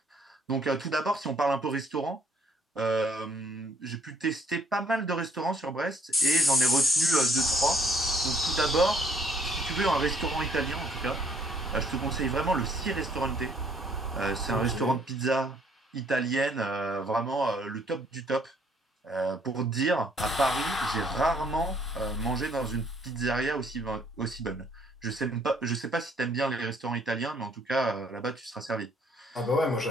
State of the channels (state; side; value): normal; both; correlation 0.64